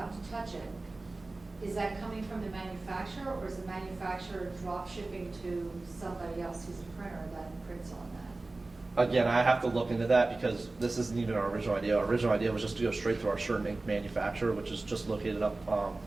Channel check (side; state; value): left; quieter; 3.2 dB